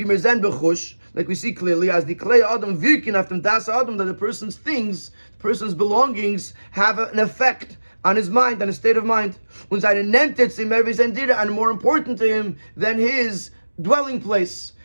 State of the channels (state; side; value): inverted; both; correlation -1.00